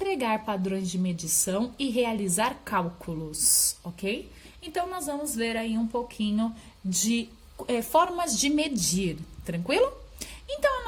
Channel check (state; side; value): identical; both; correlation 1.00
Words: Padrões de Medição e Realizar Cálculos, ok? Então, nós vamos ver aí um pouquinho de formas de medir, tranquilo? Então,